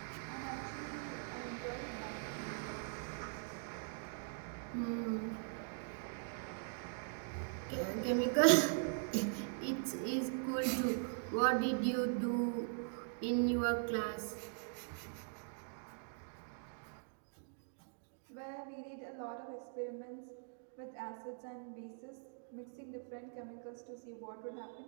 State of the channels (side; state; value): left; silent; digital silence